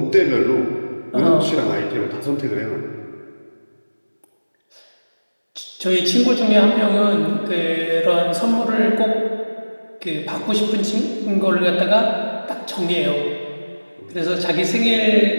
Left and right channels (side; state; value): both; inverted; correlation -1.00